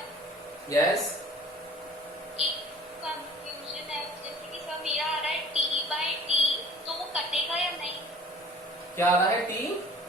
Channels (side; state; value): both; normal; correlation 0.49